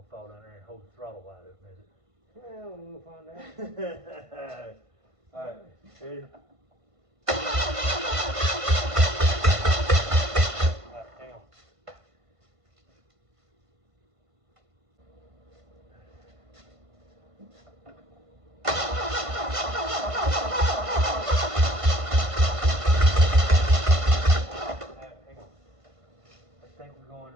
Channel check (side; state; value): left; late; 1.5 ms